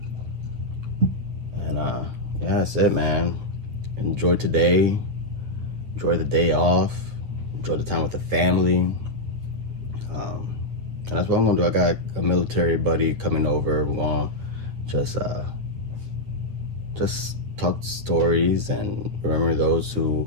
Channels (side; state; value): left; late; 9.6 ms